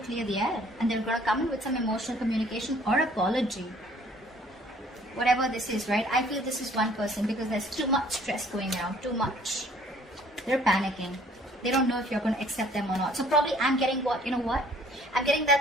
the air. And they're going to come in with some emotional communication or apology. Whatever this is, right? I feel this is one person because there's too much stress going around, too much. They're panicking. They don't know if you're going to accept them or not. So probably I'm getting what, you know what? I'm getting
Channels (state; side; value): normal; both; correlation 0.58